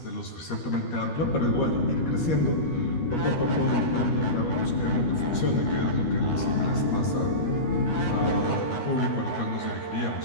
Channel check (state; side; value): late; right; 13 ms